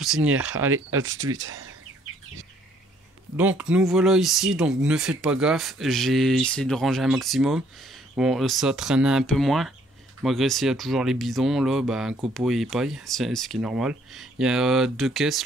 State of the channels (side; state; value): both; normal; correlation 0.64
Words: Allez, à tout de suite. Donc nous voilà ici, donc ne faites pas gaffe, j'ai essayé de ranger un maximum. Bon, ça traînait un peu moins, malgré s'il y a toujours les bidons là, bah, un copeau et paille, c'est ce qui est normal. Il y a deux caisses